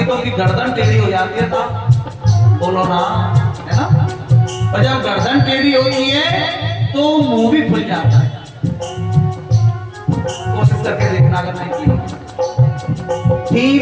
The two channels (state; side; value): identical; both; correlation 1.00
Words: तो उनकी गर्दन टेढ़ी हो जाती है। था बोलो ना, है ना। और जब गर्दन टेढ़ी होती है तो मुंह भी खुल जाता है। कोशिश करके देखना अगर नहीं की।